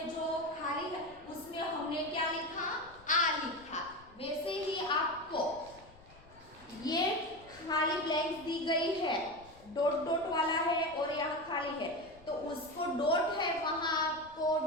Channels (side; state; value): left; noise; rumble, 24 dB below the sound